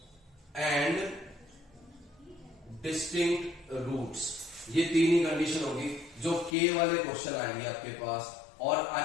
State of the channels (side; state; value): right; drops out; at 6.6 s